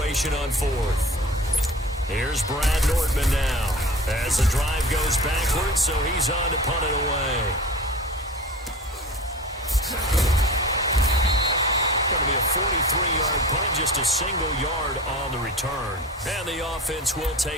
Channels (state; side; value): normal; both; correlation 0.37